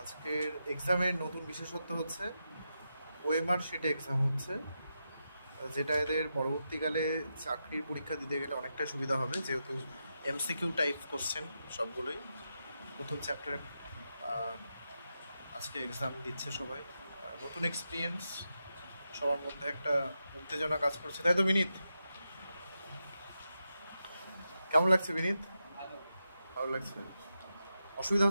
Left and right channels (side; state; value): both; inverted; correlation -0.87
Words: আজকের এক্সামের নতুন বিশেষত্ব হচ্ছে ওএমআর শিটে এক্সাম হচ্ছে, যেটা এদের পরবর্তীকালে চাকরির পরীক্ষা দিতে গেলে অনেকটা সুবিধা হবে, যেহেতু এমসিকিউ টাইপ কোশ্চেন সবগুলোই। প্রথম চ্যাপ্টারে আজকে এক্সাম দিচ্ছে সবাই। নতুন এক্সপিরিয়েন্স, সবার মধ্যে একটা উত্তেজনা কাজ করছে, তাই তো বিনীত? কেমন লাগছে বিনীত? ভালো লাগছে? অসুবিধা